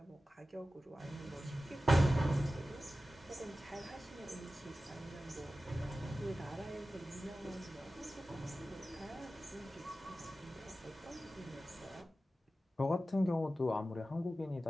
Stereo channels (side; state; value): both; normal; correlation 0.95